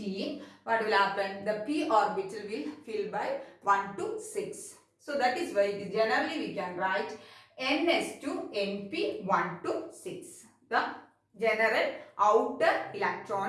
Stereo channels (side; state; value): both; identical; correlation 1.00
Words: what will happen? The p orbital will fill by 1 to 6. So that is why it is generally we can write ns to np 1 to 6. The general outer